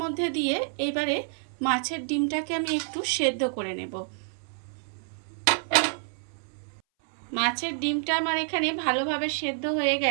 মধ্যে দিয়ে এইবারে মাছের ডিমটাকে আমি একটু সেদ্ধ করে নেব। মাছের ডিমটা আমার এখানে ভালোভাবে সেদ্ধ হয়ে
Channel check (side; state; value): left; silent; 59 dB below the other